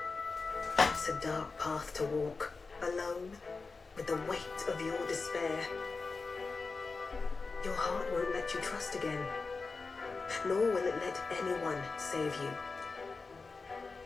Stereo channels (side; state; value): right; quieter; 4.2 dB